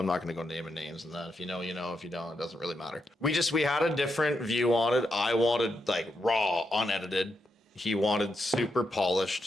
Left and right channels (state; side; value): normal; both; correlation 0.83